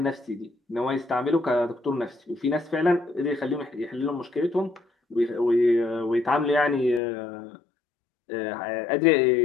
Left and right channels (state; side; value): drops out; right; at 7.0 s